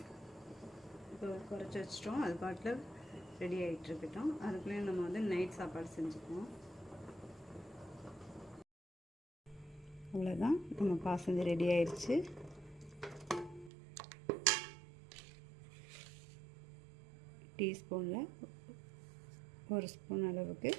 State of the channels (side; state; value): left; drops out; at 13.7 s